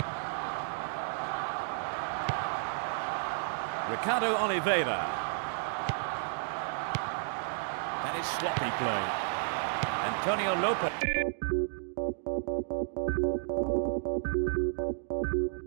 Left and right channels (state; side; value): silent; left; digital silence